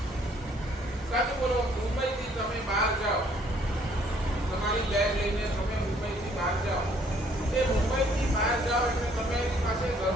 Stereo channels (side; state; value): both; normal; correlation 0.63